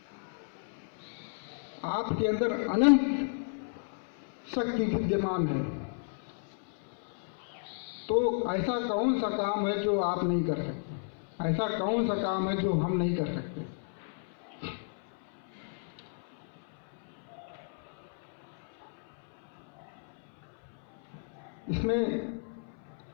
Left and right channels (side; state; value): right; silent; 56 dB below the other